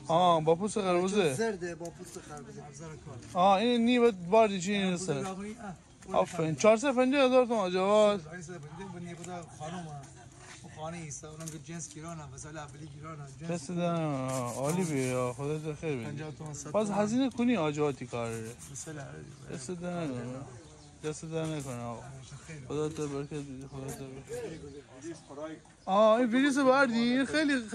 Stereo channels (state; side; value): identical; both; correlation 1.00